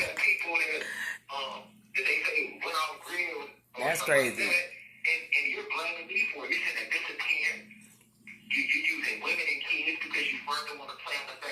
people that they say went off grid. That's crazy. Like that, and you're blaming me for it. You're saying that disappearing. You're using women and kids because you further want to play on the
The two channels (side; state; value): both; identical; correlation 1.00